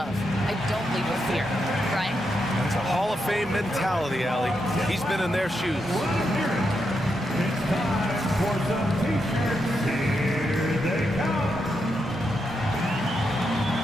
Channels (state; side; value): normal; both; correlation 0.83